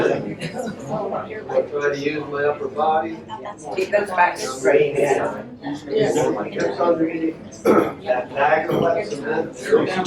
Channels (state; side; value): identical; both; correlation 1.00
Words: I try to use my upper body. Keep those back straight. My hips underneath. That bag of wet cement, very